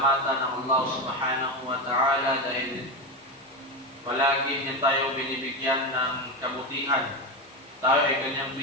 ng Allah subhanahu wa ta'ala dahil palagi niya tayo binibigyan ng kabutihan. Tayo ay kanyang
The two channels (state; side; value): normal; both; correlation 0.16